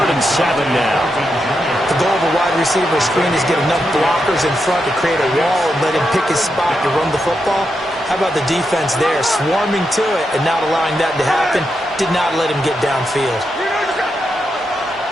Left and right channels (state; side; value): normal; both; correlation 0.85